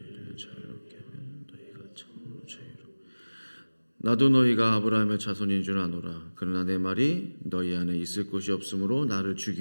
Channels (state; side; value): inverted; both; correlation -1.00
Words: 자유롭게 하면 너희가 참으로 자유롭고 나도 너희가 아브라함의 자손인 줄 아노라. 그러나 내 말이 너희 안에 있을 곳이 없으므로 나를